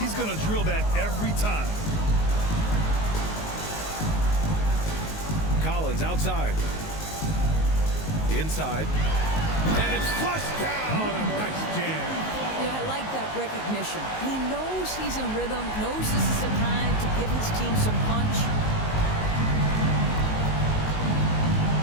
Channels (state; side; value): late; right; 19 ms